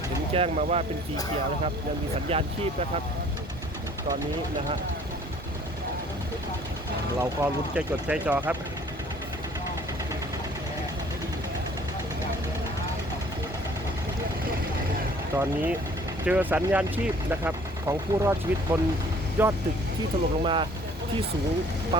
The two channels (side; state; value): both; normal; correlation 0.55